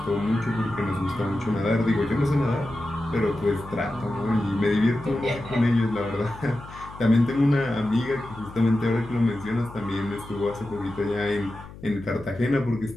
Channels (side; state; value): left; noise; hum, 16 dB below the sound